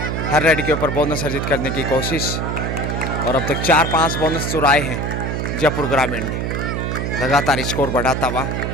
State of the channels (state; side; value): noise; right; hum, 2 dB below the sound